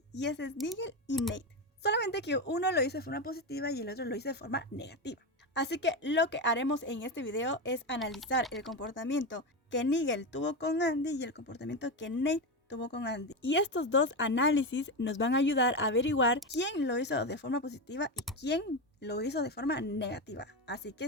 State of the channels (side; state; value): both; normal; correlation 0.15